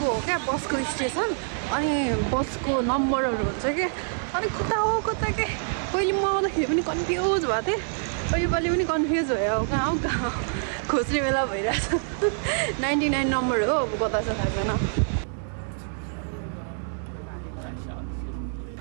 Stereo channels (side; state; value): left; silent; 61 dB below the other